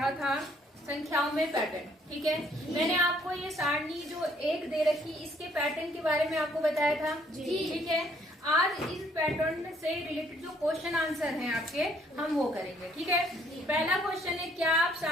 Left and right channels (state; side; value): normal; both; correlation 0.65